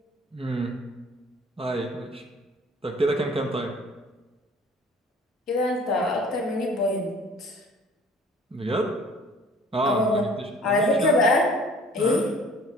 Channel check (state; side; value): normal; both; correlation 0.50